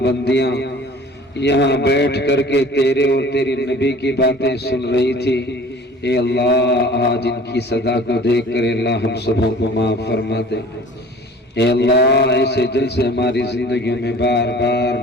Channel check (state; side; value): normal; both; correlation 0.46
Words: بندیاں یہاں بیٹھ کر کے تیرے اور تیری نبی کی باتیں سن رہی تھی. اے اللہ آج ان کی صدا کو دیکھ کر اللہ ہم سبوں کو معاف فرما دے. اے اللہ ایسے جلسے ہماری زندگیوں میں بار